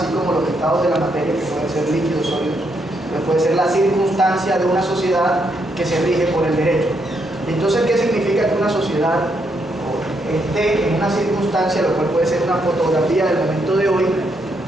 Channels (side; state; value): both; normal; correlation 0.77